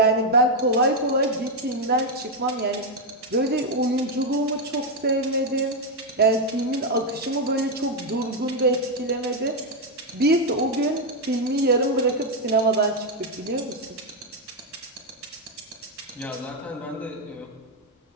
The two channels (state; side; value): normal; both; correlation 0.03